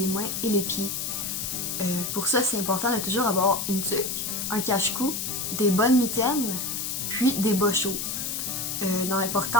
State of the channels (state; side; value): noise; left; hiss, 3 dB below the sound